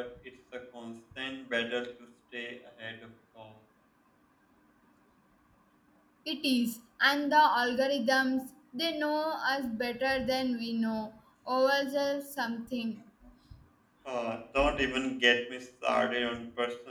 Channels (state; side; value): identical; both; correlation 1.00